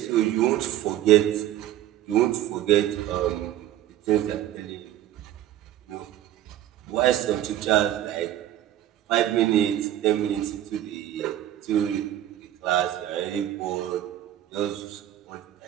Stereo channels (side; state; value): left; quieter; 12.3 dB